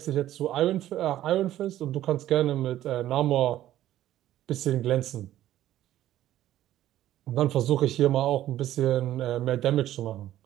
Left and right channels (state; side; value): quieter; left; 13.2 dB